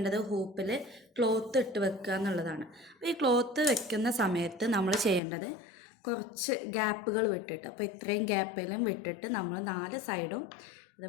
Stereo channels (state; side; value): drops out; right; at 5.2 s